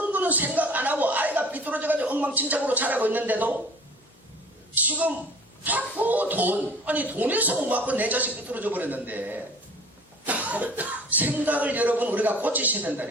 거는 생각 안 하고 아이가 삐뚤어져가지고 엉망진창으로 자라고 있는데도 지금 자꾸 돈에서 못 받고 내 자식 삐뚤어져 버렸는데 생각을 여러분 우리가 고치셔야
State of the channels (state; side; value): normal; both; correlation 0.45